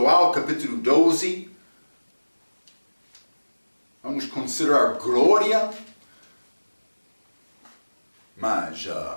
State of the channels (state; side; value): inverted; both; correlation -1.00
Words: capítulo 12. Vamos considerar glória. Mas